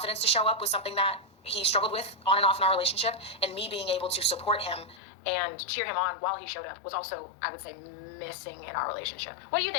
to show up was something that he struggled with on and off in our relationship, and me being able to support him and cheer him on while he showed up was also, I would say, missing in our relationship. What do you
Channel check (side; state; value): right; drops out; at 5.0 s